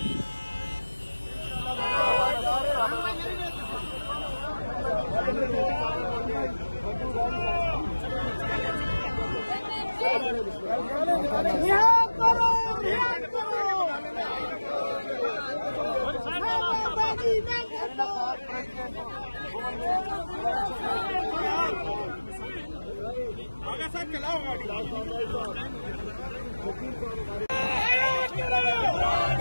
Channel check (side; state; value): both; inverted; correlation -1.00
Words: आगे सर चलाओ गाड़ी।